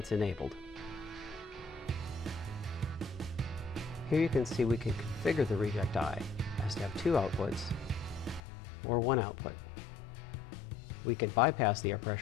enabled. Here you can see we can configure the reject eye as to have 2 outputs or 1 output. We can bypass the air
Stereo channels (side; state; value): right; drops out; at 8.4 s